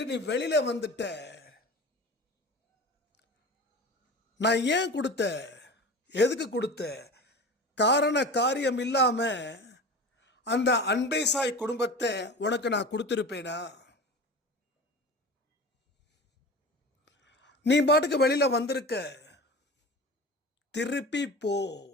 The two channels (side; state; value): both; normal; correlation 0.33